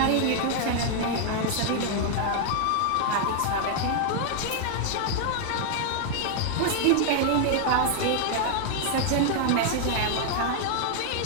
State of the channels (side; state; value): both; different; correlation 0.00